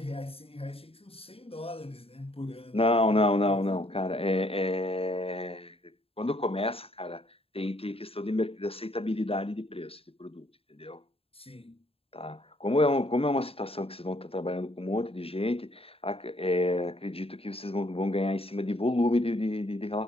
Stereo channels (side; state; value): right; late; 0.28 ms